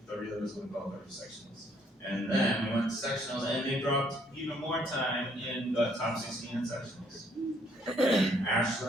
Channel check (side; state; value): both; normal; correlation 0.66